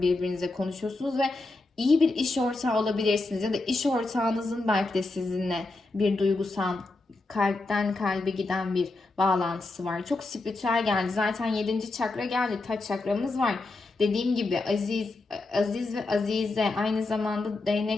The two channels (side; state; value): right; quieter; 3.2 dB